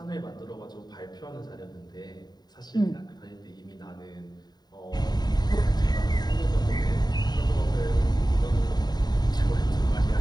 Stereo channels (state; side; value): late; right; 0.20 ms